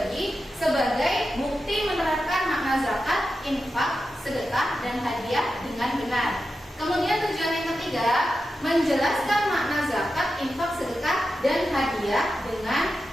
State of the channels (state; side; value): normal; both; correlation 0.90